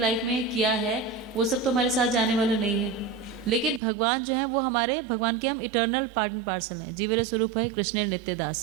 में किया है वो सब तो हमारे साथ जाने वाला नहीं है, लेकिन भगवान जो है वो हमारे, भगवान के हम इटर्नल पार्ट एंड पार्सल हैं। जीवेर स्वरूप है कृष्ण नित्य दास।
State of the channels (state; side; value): drops out; left; at 3.8 s